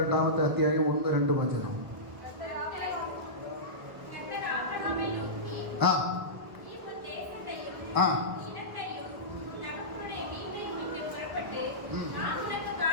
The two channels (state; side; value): late; left; 1.3 ms